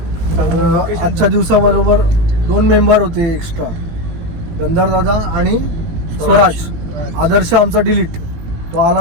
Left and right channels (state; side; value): late; left; 18 ms